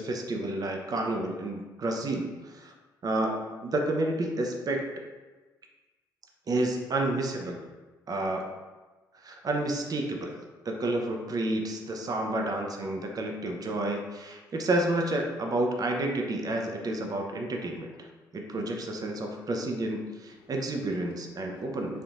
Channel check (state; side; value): normal; both; correlation 0.67